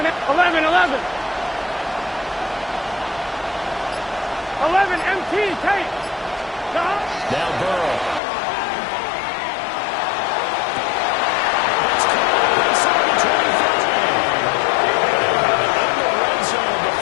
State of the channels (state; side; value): drops out; right; at 8.2 s